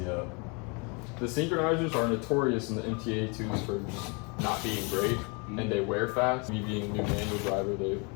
The synchronizers are notorious in the MTA2s for just not being great, and they wear fast. Me being a new manual driver, they...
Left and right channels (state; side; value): quieter; right; 32.4 dB